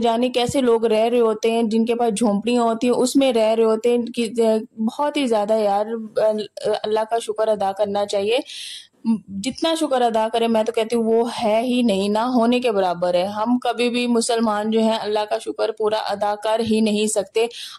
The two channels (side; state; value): both; identical; correlation 1.00